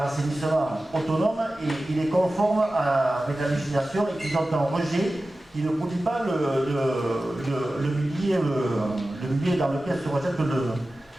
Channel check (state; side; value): normal; both; correlation 0.95